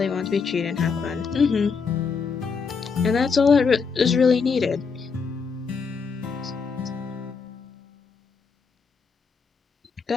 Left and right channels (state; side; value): quieter; right; 5.3 dB